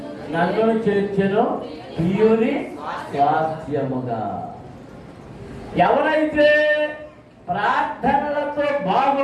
నన్ను చేర్చెను ప్రియుని స్వాస్థ్యముగా. ఎవరైతే ప్రార్థనలతో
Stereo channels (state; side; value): identical; both; correlation 1.00